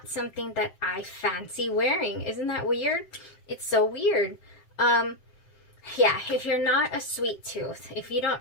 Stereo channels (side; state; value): right; late; 7.6 ms